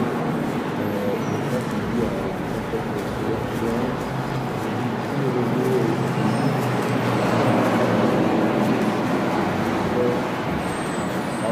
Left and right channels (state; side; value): identical; both; correlation 1.00